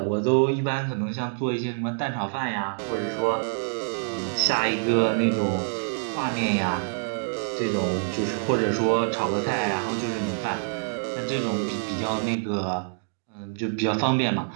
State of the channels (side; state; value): left; silent; digital silence